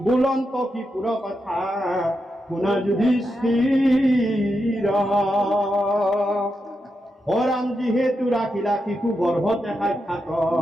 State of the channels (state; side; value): normal; both; correlation 0.86